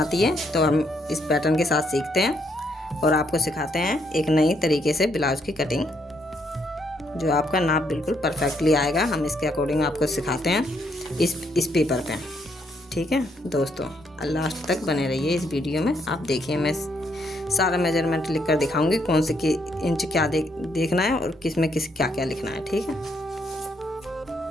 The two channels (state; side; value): normal; both; correlation 0.74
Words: है तो हम इस पैटर्न के साथ सीखते हैं और आपको सिखाते हैं एक नई तरीके से ब्लाउज की कटिंग, जो आपका नाप बिल्कुल परफेक्टली आएगा। हम इसके अकॉर्डिंग आपको सिखाते हैं इस पेपर पे। ठीक है दोस्तों, लास्ट तक बने रहिए इस वीडियो में। आप देखिए, मैं सारा मेजरमेंट लिख कर दिखाऊंगी कौन से इंच क्या देखना है और किस में क्या क्या लिखना है। ठीक है,